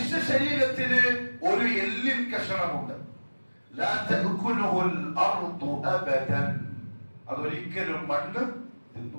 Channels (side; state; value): both; inverted; correlation -1.00